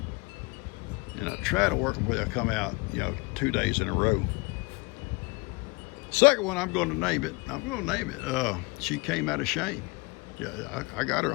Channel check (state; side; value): quieter; right; 27.5 dB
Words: And I try to work them where they'll come out, 2 days in a row. Second one, I'm going to name it. She Came Out of Shame. Yeah, I got her